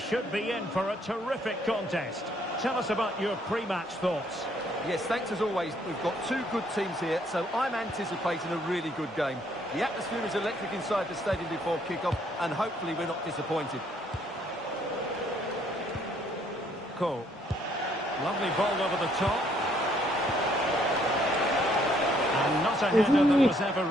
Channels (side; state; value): both; normal; correlation 0.67